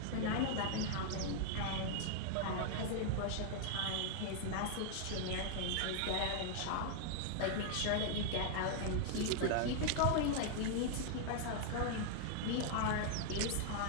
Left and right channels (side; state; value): both; different; correlation -0.01